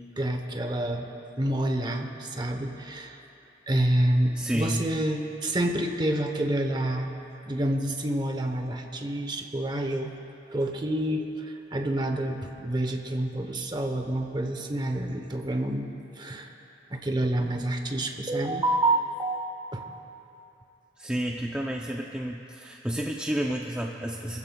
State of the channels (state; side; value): normal; both; correlation 0.73